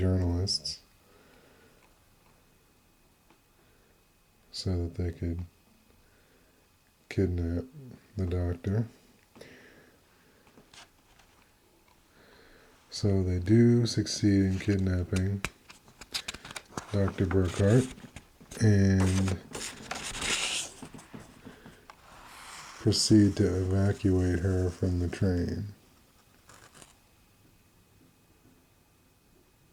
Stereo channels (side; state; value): both; identical; correlation 1.00